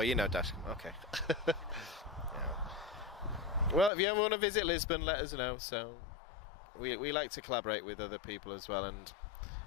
know Dash. Okay. Yeah. Well, if you ever want to visit Lisbon, let us know. So we like to collaborate with other people as well, and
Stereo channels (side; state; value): right; drops out; at 3.9 s